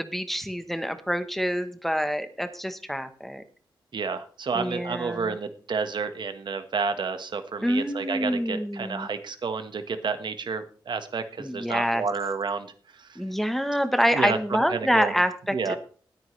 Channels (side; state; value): both; normal; correlation 0.79